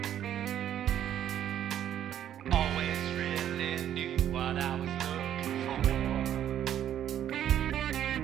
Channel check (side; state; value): left; quieter; 10.7 dB